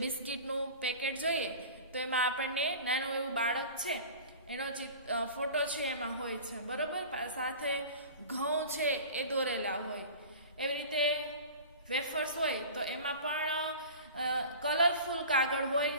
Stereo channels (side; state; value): both; inverted; correlation -0.38